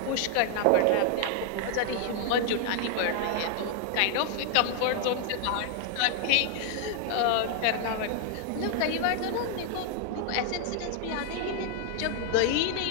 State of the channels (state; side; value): different; both; correlation 0.00